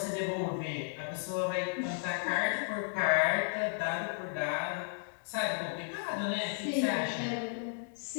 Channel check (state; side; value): silent; right; digital silence